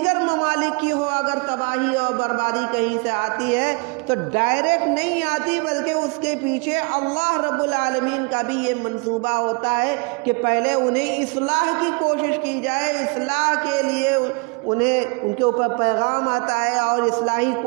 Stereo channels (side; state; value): left; quieter; 31.8 dB